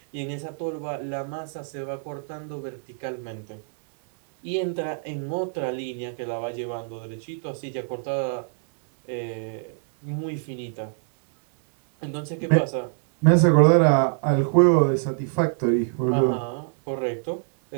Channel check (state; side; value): silent; left; 62 dB below the other